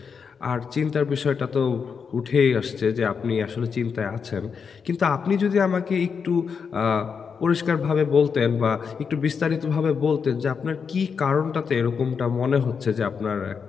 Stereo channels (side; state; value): right; quieter; 6.1 dB